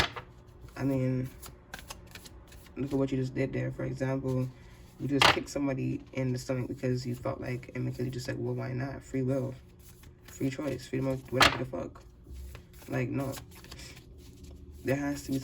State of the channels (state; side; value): identical; both; correlation 1.00